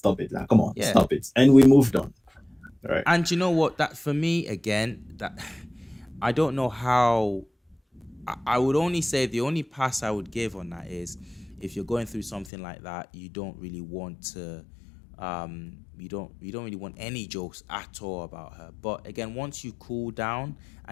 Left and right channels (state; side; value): drops out; right; at 12.5 s